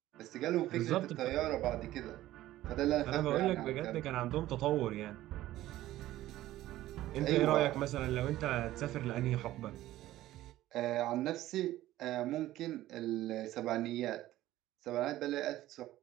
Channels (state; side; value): quieter; left; 15.0 dB